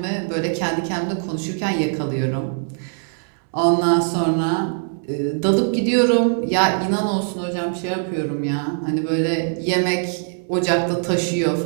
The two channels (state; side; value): silent; left; 65 dB below the other